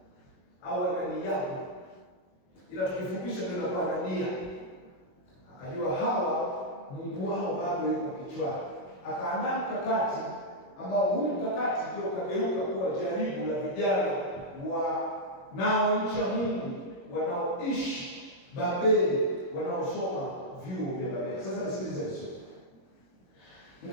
au Ananiyawe, ila tukifupisha ndio inakuwa Anania. Akajua hawa Mungu wao bado yuko kichwani. Akaandaa mkakati ambao huu mkakati ndio kageuka kuwa jaribu la vijana wanaomcha Mungu, wanaoishi Babeli, wanaosoma vyuo vya Babeli. Sasa nisikilize vizuri.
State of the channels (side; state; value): right; late; 22 ms